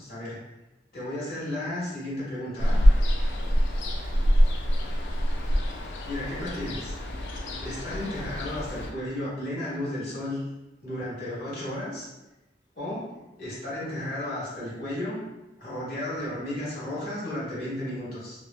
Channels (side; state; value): both; normal; correlation 0.87